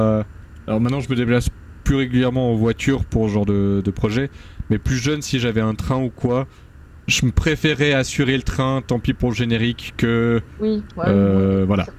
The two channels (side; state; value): both; identical; correlation 1.00